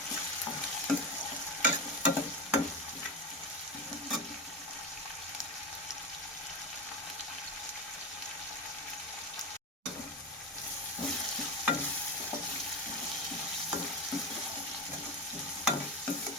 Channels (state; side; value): normal; both; correlation 0.20